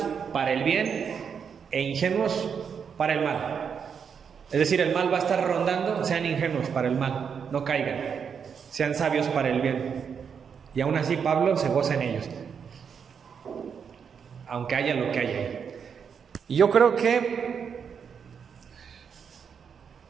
para el bien e ingenuos para el mal. Es decir, el mal va a estar rondando, sean ingenuos para el mal, no caigan, sean sabios para el bien. Y aún así Pablo se goza en ellos, aunque haya lo que haya ahí. Y yo creo que,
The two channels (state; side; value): quieter; left; 6.8 dB